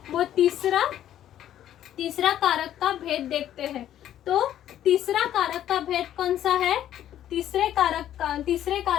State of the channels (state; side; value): quieter; right; 11.5 dB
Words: वो तीसरा कारक का भेद देखते हैं। तो तीसरा कारक का भेद कौन सा है? तीसरे